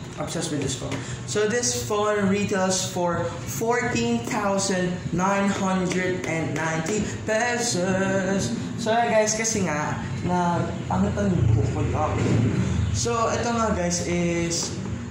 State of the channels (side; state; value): both; identical; correlation 1.00